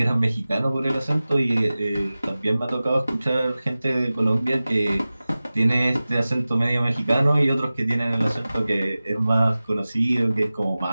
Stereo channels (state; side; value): inverted; both; correlation -0.97